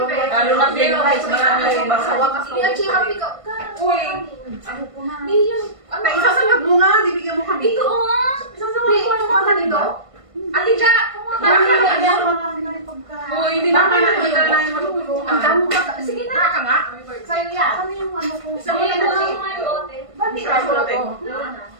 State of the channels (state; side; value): late; left; 1.5 ms